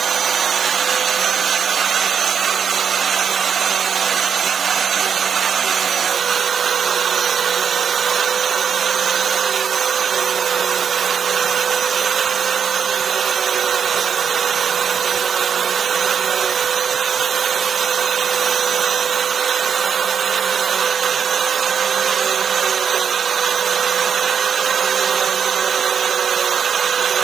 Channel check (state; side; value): quieter; left; 7.2 dB